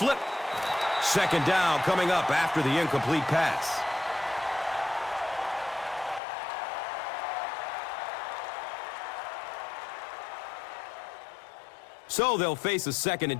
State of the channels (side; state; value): right; drops out; at 6.2 s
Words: Second down coming up after the incomplete pass. So they'll face a 2nd